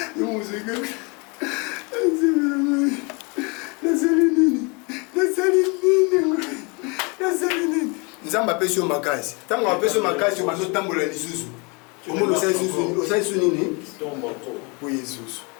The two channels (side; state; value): right; quieter; 30.7 dB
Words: Nzamba apesi yo makasi. Ntango apesi yo makasi obazotambola lisusu. Omoni osali su nini? Po Yesusu.